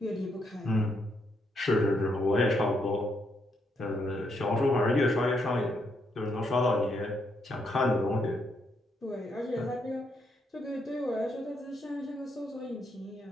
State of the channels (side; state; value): both; normal; correlation 0.77